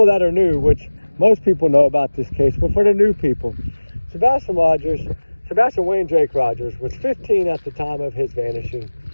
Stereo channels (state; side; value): inverted; both; correlation -1.00